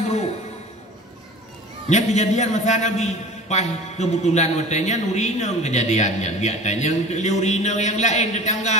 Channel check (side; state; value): both; normal; correlation 0.39